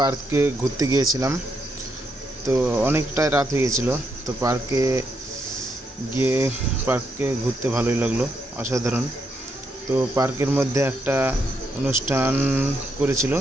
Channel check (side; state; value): both; normal; correlation 0.79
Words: ঘুরতে গিয়েছিলাম। তো অনেকটাই রাত হয়ে গেছিলো। তো পার্কে ঘুরতে ভালোই লাগলো, অসাধারণ। তো পার্কের মধ্যে একটা অনুষ্ঠান করেছিল।